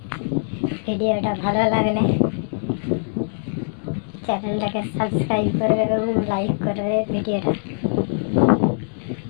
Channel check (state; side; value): silent; right; digital silence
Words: ভিডিওটা ভালো লাগলে চ্যানেলটাকে সাবস্ক্রাইব করবে এবং লাইক করবে। ভিডিওটা